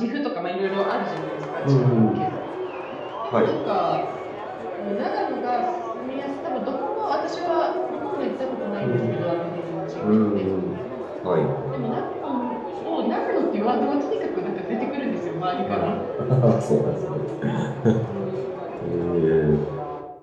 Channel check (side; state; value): both; identical; correlation 1.00